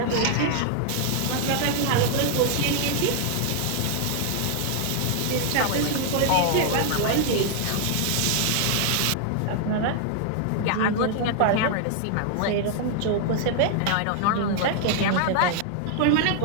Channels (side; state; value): both; different; correlation 0.00